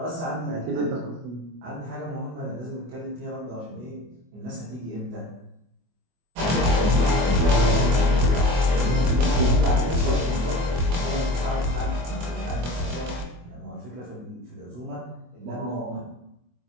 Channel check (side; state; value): left; late; 24 ms